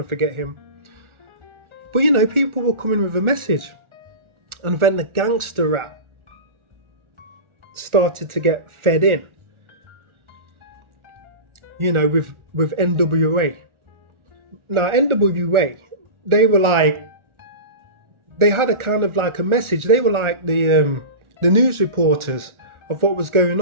forget him? But you know, people were coming with a message, and then the gangster rap started to get fed in. You know, with NWA. Now NWA, they had a kind of like a message. They were like the news reporters of what was going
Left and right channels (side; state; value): left; late; 1.4 ms